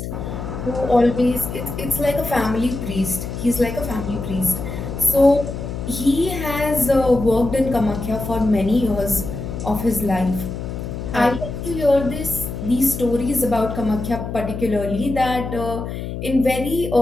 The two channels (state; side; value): noise; left; hum, 6 dB below the sound